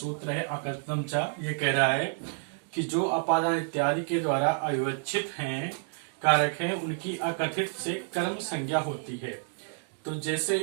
है अकथितम च। ये कह रहा है कि जो अपादान इत्यादि के द्वारा अविवक्षित हैं कारक हैं, उनकी अकथित से कर्म संज्ञा होती है। तो जैसे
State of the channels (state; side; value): silent; left; digital silence